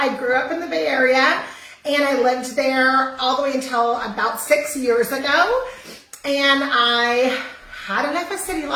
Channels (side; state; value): both; identical; correlation 1.00